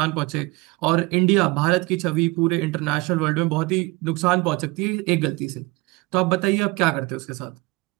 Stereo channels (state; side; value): quieter; left; 23.7 dB